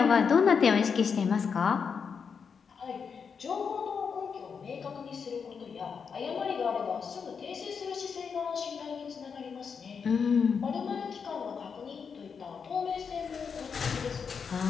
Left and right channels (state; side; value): quieter; right; 6.2 dB